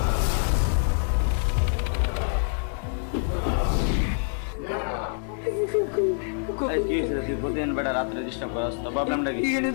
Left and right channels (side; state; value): right; silent; 61 dB below the other